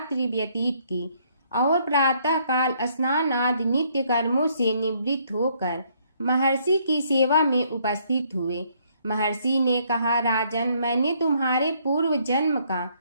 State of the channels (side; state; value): both; inverted; correlation -0.68